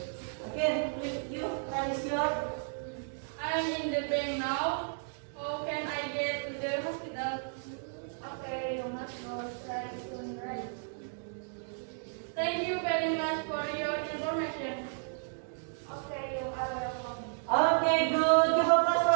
Oke, you raise your. I'm in the bank now. How can I get to the hospital? Okay, you must go straight to the right. Thank you very much for your information. Okay, you are welcome. Okay, good. Give applause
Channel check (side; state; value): left; silent; digital silence